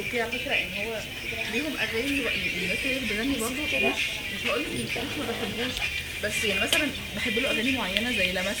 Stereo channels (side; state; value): both; identical; correlation 1.00